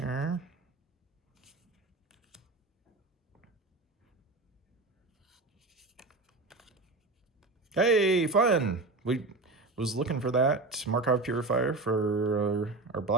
Hey, fun! We was looking for that Markov Purifier for our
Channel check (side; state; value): left; quieter; 3.4 dB